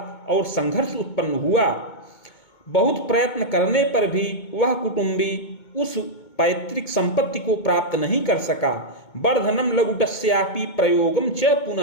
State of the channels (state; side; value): late; right; 2.2 ms